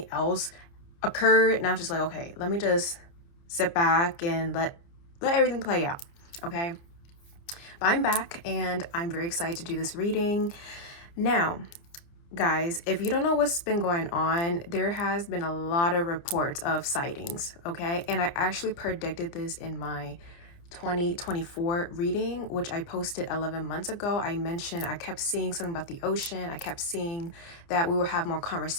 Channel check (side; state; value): right; late; 29 ms